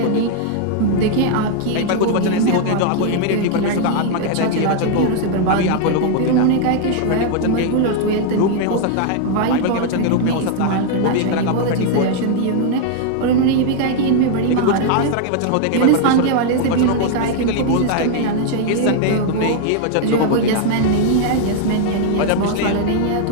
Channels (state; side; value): different; both; correlation 0.00